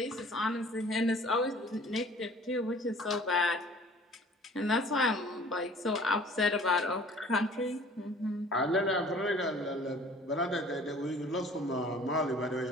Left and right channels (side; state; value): both; normal; correlation 0.49